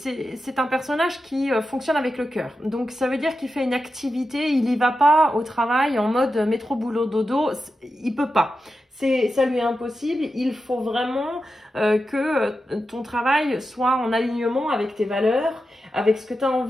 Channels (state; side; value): normal; both; correlation 0.90